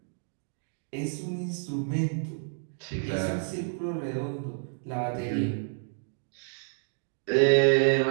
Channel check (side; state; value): left; silent; digital silence